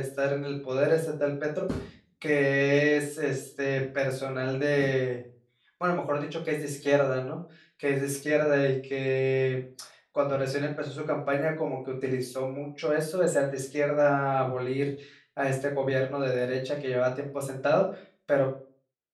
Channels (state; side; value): identical; both; correlation 1.00